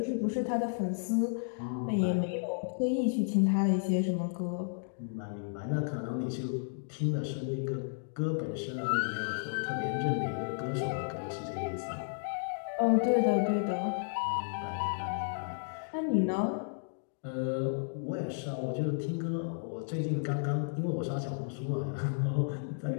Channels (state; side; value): silent; right; digital silence